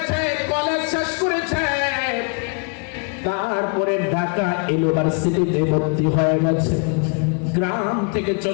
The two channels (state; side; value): quieter; right; 37.1 dB